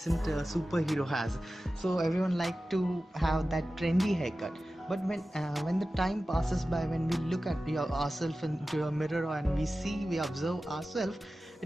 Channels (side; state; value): both; normal; correlation 0.95